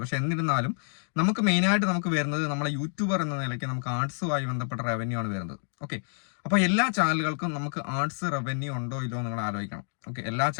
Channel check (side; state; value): right; silent; 59 dB below the other